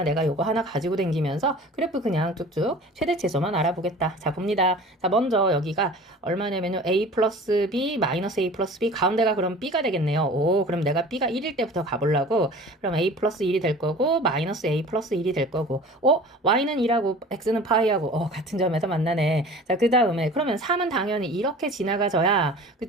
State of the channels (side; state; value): both; normal; correlation 0.42